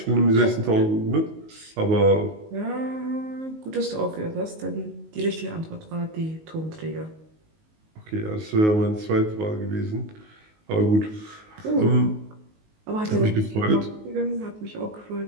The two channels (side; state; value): left; late; 19 ms